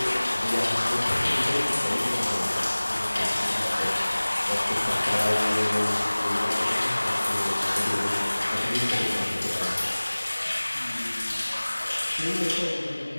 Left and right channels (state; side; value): inverted; both; correlation -1.00